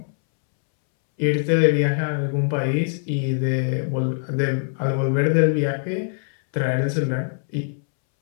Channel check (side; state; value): right; silent; 64 dB below the other